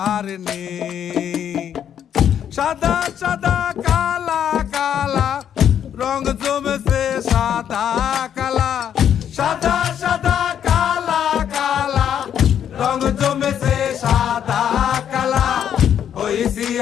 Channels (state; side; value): quieter; right; 9.3 dB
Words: সাদা সাদা কালা কালা রং জমেছে সাদা কালা, সাদা সাদা কালা কালা রং জমেছে সাদা কালা। হইছি